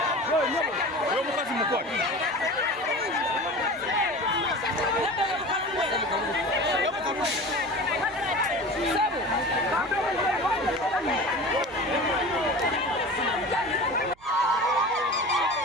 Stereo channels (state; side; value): noise; right; rumble, 28 dB below the sound